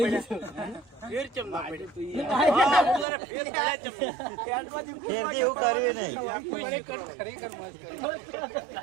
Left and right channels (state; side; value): drops out; left; at 3.1 s